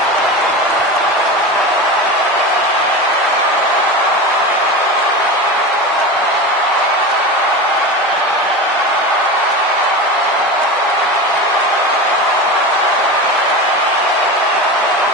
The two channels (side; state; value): both; normal; correlation 0.26